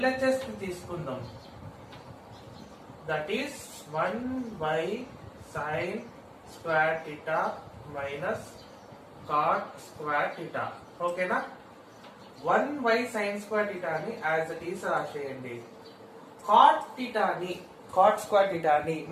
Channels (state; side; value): identical; both; correlation 1.00